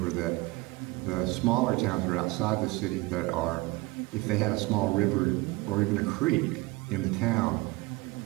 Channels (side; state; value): left; quieter; 22.7 dB